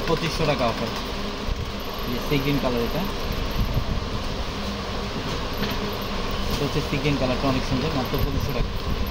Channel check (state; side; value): identical; both; correlation 1.00